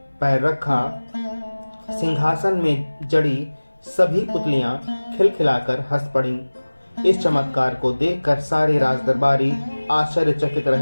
पैर रखा, सिंहासन में जड़ी सभी पुतलियां खिलखिलाकर हंस पड़ीं। इस चमत्कार को देखकर सारे राजदरबारी आश्चर्यचकित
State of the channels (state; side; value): inverted; both; correlation -1.00